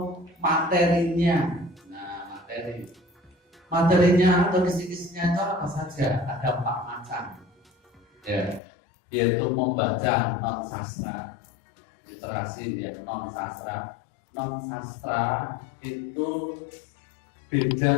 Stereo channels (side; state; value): right; drops out; at 8.6 s